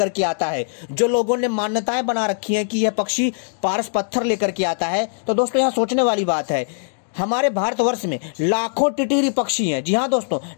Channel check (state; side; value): silent; right; digital silence